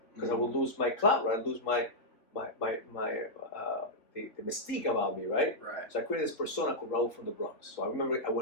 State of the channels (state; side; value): late; right; 3.5 ms